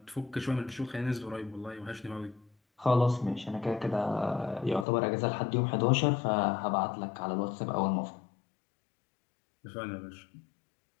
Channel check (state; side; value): drops out; right; at 4.9 s